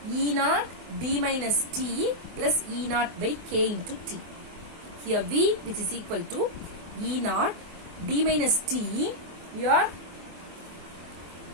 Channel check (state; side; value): late; left; 24 ms